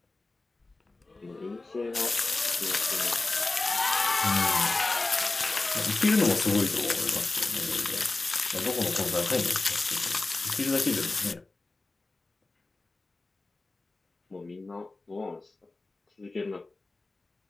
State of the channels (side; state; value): right; quieter; 3.3 dB